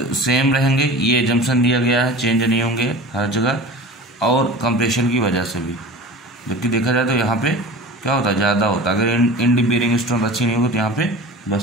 सेम रहेंगे, ये एजम्पशन दिया गया है, चेंज नहीं होंगे हर जगह, और कंप्रेशन की वजह से भी। जबकि देखा जाए तो यहाँ पे क्या होता है, ज़्यादा होता है। अगर इंड बेयरिंग स्ट्रेंथ अच्छी नहीं होगी तो यहाँ पे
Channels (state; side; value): normal; both; correlation 0.37